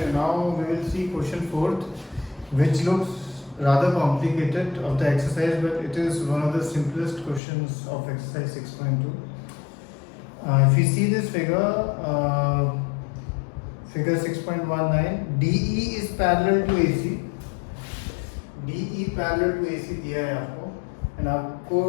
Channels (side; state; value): right; drops out; at 7.4 s